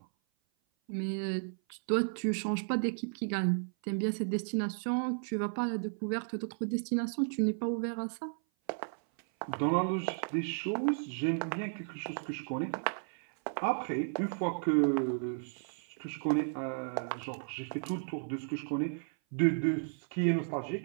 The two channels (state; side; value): silent; left; 55 dB below the other